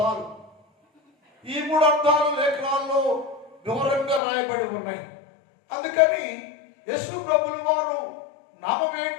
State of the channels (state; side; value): drops out; right; at 4.2 s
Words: ఈ మూడు అర్థాలు లేఖనాల్లో వివరంగా రాయబడి ఉన్నాయి. అందుకని యేసు ప్రభుల వారు నామం